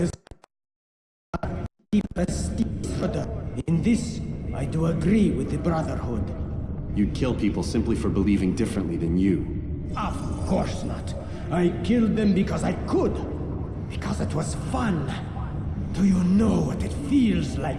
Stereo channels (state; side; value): identical; both; correlation 1.00